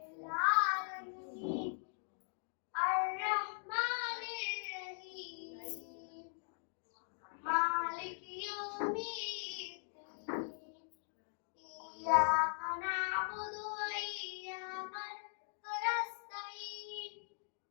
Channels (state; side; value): silent; right; digital silence